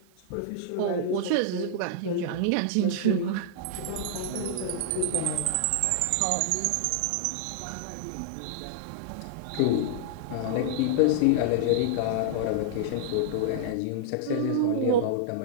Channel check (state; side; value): different; both; correlation -0.01